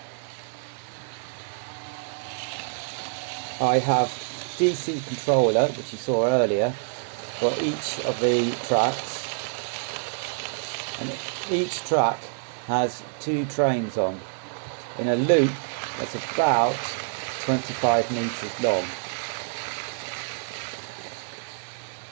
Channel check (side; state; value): left; silent; digital silence